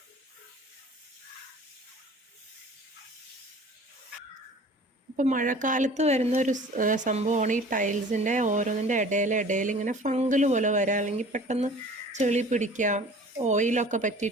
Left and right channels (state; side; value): normal; both; correlation 0.46